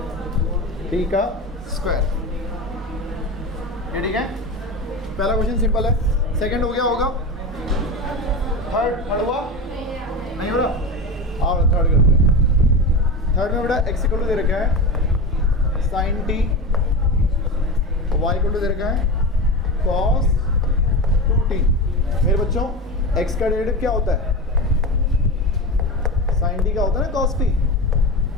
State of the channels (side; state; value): both; normal; correlation 0.24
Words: t का स्क्वायर। ये ठीक है, पहला क्वेश्चन सिंपल है। सेकंड हो गया होगा, थर्ड हुआ नहीं हो रहा, आओ थर्ड करते हैं। थर्ड में बेटा x इक्वल टू दे रखा है sin t, y equal to दे रखा है cos 2t। मेरे बच्चों x का डेरिवेटिव क्या होता है, sin t का होता है ना cos t,